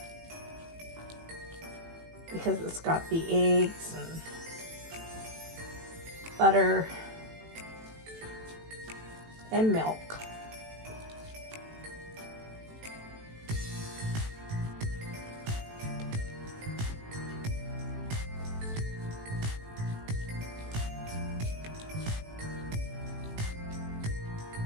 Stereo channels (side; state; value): left; late; 18 ms